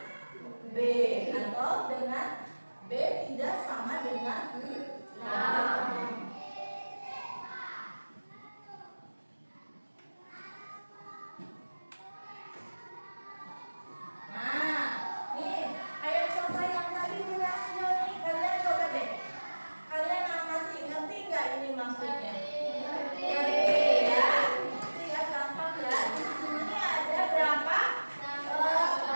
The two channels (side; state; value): both; inverted; correlation -1.00